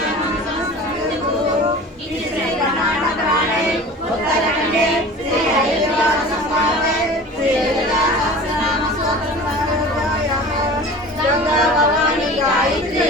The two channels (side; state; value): both; normal; correlation 0.39